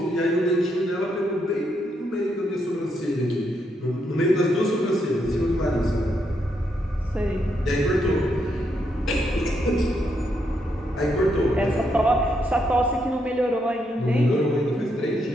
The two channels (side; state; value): both; normal; correlation 0.78